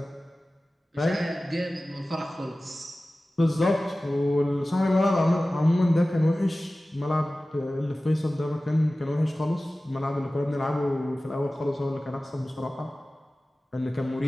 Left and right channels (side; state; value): both; normal; correlation 0.97